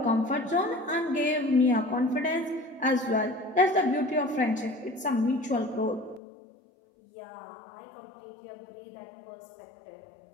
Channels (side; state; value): right; drops out; at 6.2 s